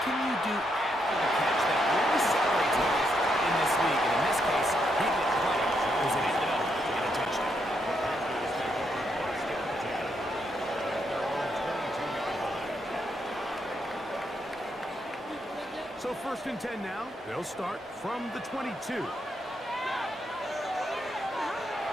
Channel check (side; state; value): both; normal; correlation 0.79